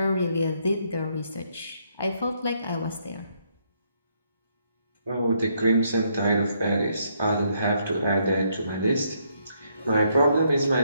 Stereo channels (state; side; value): inverted; both; correlation -0.73